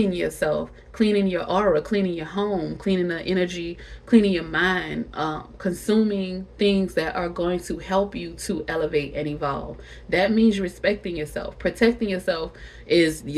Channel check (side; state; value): both; identical; correlation 1.00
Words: yourself, cleaning your aura, cleaning your home, cleaning the energy, cleaning your mind, consuming things that are going to help you to elevate and evolve. That means respecting yourself. Protecting yourself is